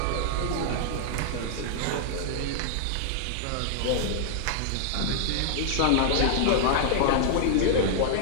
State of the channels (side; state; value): both; different; correlation -0.01